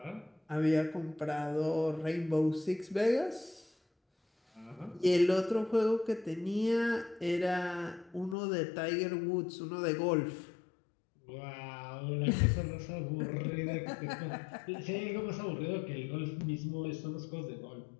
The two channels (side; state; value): right; drops out; at 8.3 s